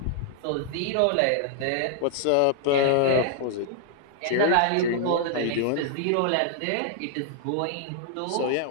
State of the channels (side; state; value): both; different; correlation -0.01